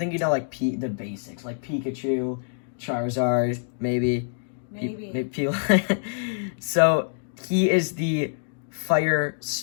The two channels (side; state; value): right; silent; digital silence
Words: you know, like, the basics. Like, Pikachu, Charizard, maybe. Maybe. So, he is the Fire